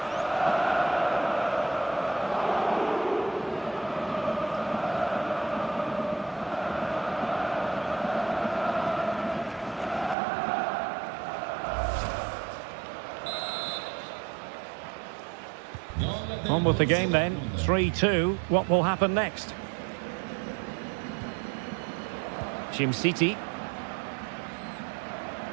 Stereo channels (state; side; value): drops out; left; at 10.2 s